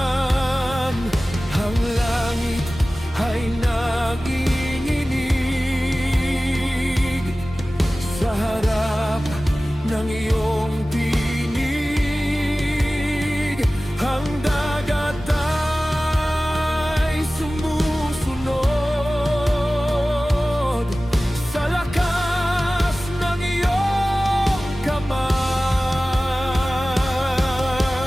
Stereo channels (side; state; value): both; normal; correlation 0.97